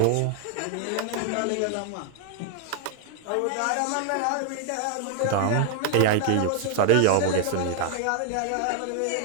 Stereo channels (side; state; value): both; different; correlation 0.00